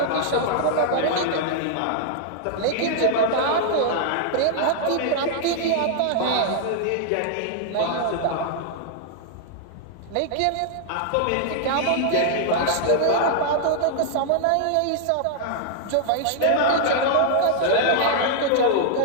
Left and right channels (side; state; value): both; different; correlation -0.01